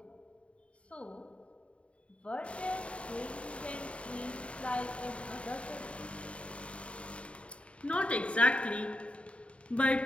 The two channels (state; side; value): late; right; 0.061 ms